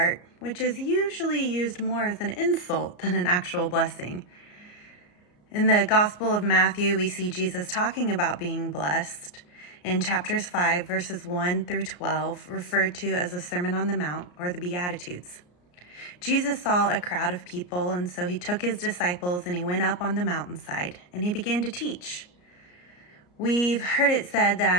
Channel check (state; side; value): late; right; 34 ms